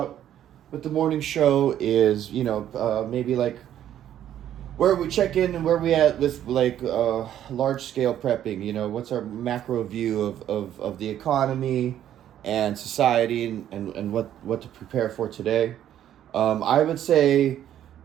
with the morning show is, maybe like where we check in and where we at with like large scale prepping. What's our macro view of the economy and society and what to prepare for today. I would say,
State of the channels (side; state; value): left; quieter; 11.1 dB